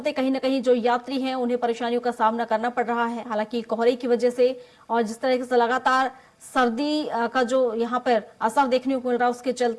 कहीं न कहीं जो यात्री हैं उन्हें परेशानियों का सामना करना पड़ रहा है। हालांकि कोहरे की वजह से और जिस तरह से लगातार सर्दी का जो यहाँ पर असर देखने को मिल रहा है, उसके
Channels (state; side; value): identical; both; correlation 1.00